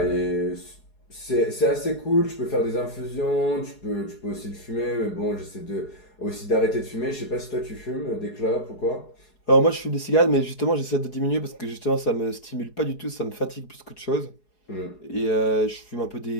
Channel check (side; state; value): right; late; 4.7 ms